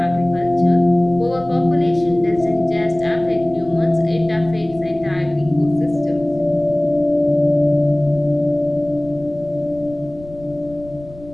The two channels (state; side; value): noise; left; rumble, 20 dB below the sound